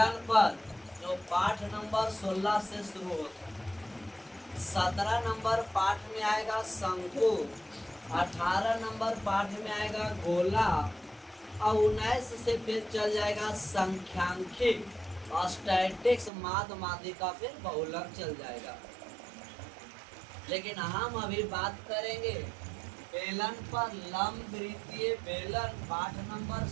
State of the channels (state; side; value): drops out; left; at 16.3 s